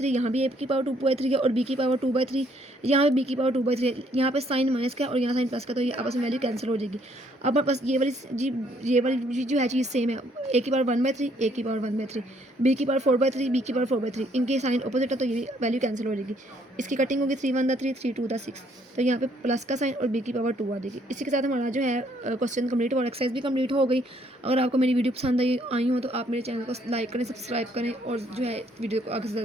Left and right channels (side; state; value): both; normal; correlation 0.67